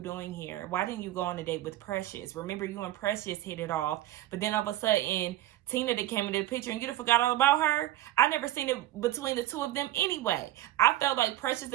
here? Why didn't you go on a date with Precious? Remember, you and Precious hit it off. But then all of a sudden, Tina that came into the picture and you forgot all about her. I never seen it between the two of them anyway. I felt like Precious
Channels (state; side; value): quieter; left; 14.4 dB